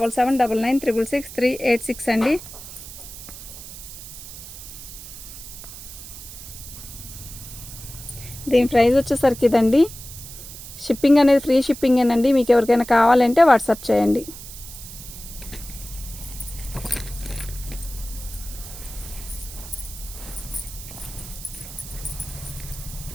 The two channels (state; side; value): noise; right; hiss, 13 dB below the sound